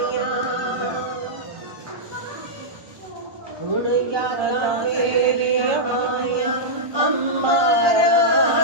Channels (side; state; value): left; late; 1.2 ms